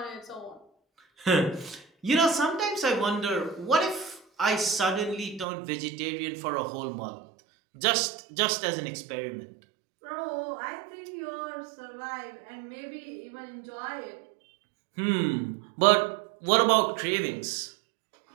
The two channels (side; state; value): left; drops out; at 5.5 s